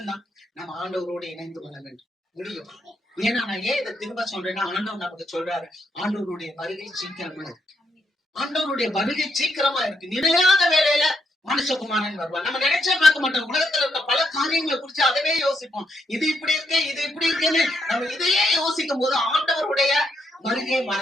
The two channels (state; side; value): normal; both; correlation 0.79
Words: நம்ம ஆண்டவரோடு இணைந்து வாழ வேண்டும் முடியும். ஏன்னா நான் ஏன் இதை திரும்ப சொல்றேன்னா, ஆண்டவர் நமக்கு சொல்றாரு, ஆண்டவருடைய வருகை சீக்கிரமா இருக்கு. ஆண்டவருடைய வருகை சீக்கிரமா இருக்கு. நிலையான வேலையில மனுஷகுமாரன் வருவான். நம்ம நினைச்சே பார்க்க மாட்டோம். உலகத்துல இருக்க பல காரியங்களை குறிச்சு அதவே யோசிப்போம். இது இப்படி இருக்கு, இது இப்படி இருக்குன்னு நம்ம இதையே யோசிக்கும் போது ஆண்டவருடைய வருகையை